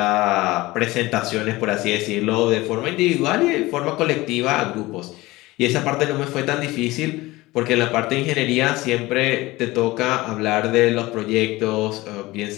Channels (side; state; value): right; quieter; 19.8 dB